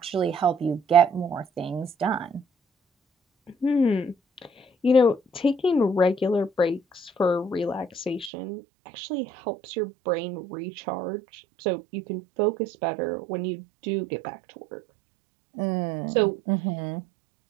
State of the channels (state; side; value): drops out; left; at 8.3 s